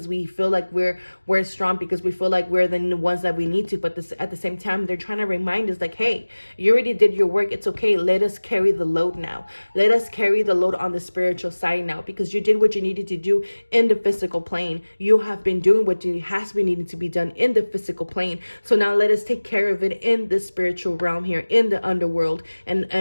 we feel like we're strong, because we feel like we're the ones that we need to. But at the same time, they're trying to remind us like, hey, you already did your work. It's okay. Let us carry the load now. Let us carry the load on the spiritual side now, because you did what you needed to do in the physical plane. You have been doing what has been needing to be done in the physical plane. So now let us take care of it in the spiritual realm here, in the underworld,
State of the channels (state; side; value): inverted; both; correlation -1.00